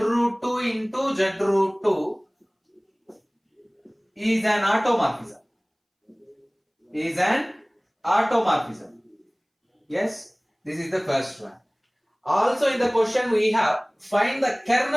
2 into Z root 2 is an automorphism. Yes, this is the first one. Also in the question we have find the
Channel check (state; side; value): identical; both; correlation 1.00